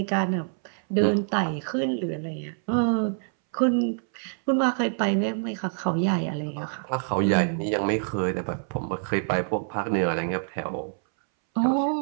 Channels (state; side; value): silent; left; 61 dB below the other